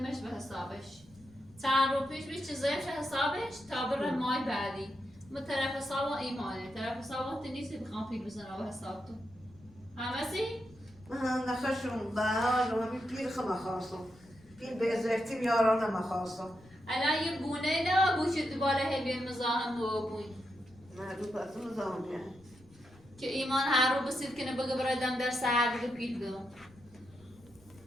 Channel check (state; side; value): noise; left; rumble, 25 dB below the sound